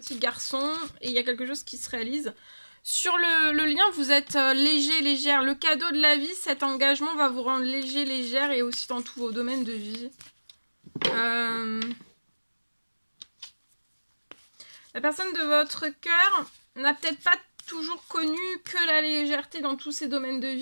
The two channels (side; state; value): both; inverted; correlation -1.00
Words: garçon et il y a quelque chose qui se réalise. Sur le lien, vous êtes léger, légère. Le cadeau de la vie, cet engagement va vous rendre léger, légère et aussi dans tous vos domaines de vie. La personne de votre cœur n'a peut-être pas toujours connu que la légèreté dans tous ses domaines de